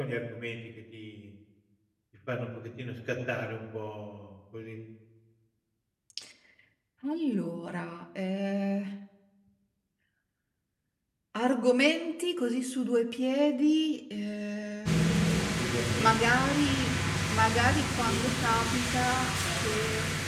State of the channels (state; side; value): identical; both; correlation 1.00